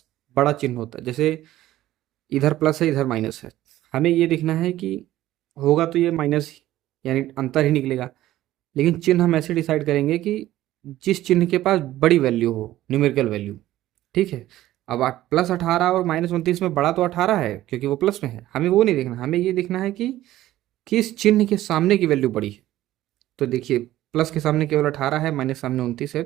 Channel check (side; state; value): left; quieter; 14.6 dB